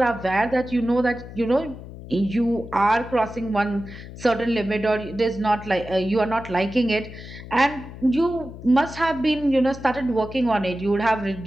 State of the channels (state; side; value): noise; left; hum, 14 dB below the sound